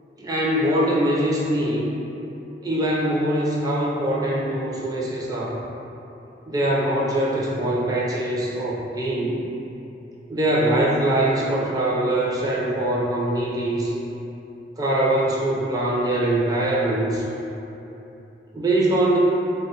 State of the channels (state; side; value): normal; both; correlation 0.48